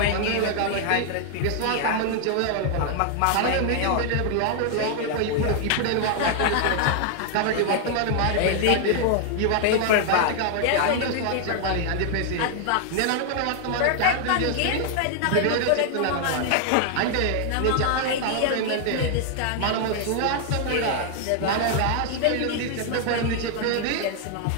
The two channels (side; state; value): both; different; correlation 0.00